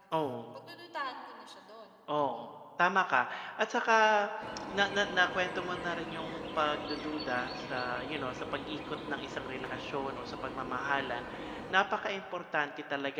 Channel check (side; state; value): both; identical; correlation 1.00